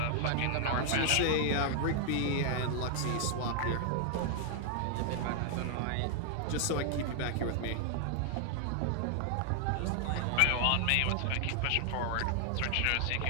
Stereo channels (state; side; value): different; both; correlation 0.00